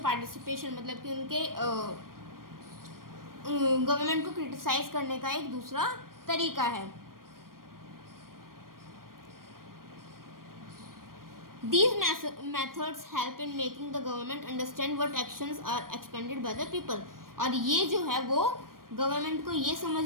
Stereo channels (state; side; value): late; left; 0.91 ms